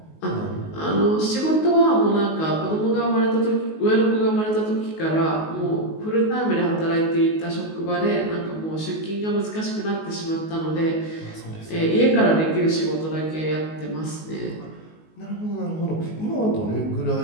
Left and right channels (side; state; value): right; late; 19 ms